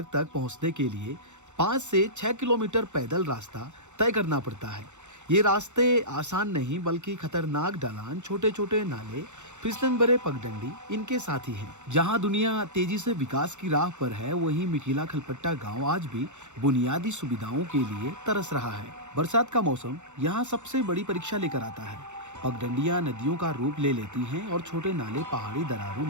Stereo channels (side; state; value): left; late; 0.84 ms